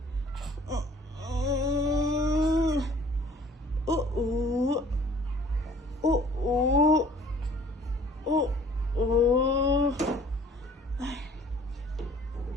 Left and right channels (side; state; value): both; normal; correlation 0.53